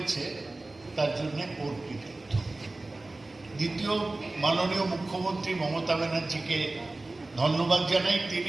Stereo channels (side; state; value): left; quieter; 3.0 dB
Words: তার জন্যে ওর কৃতিত্ব। দ্বিতীয়, মাননীয় মুখ্যমন্ত্রী মমতা ব্যানার্জিকে ধন্যবাদ জানাই।